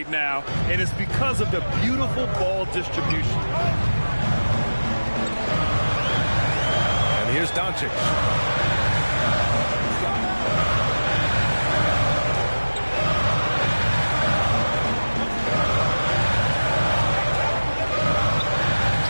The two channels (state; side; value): inverted; both; correlation -1.00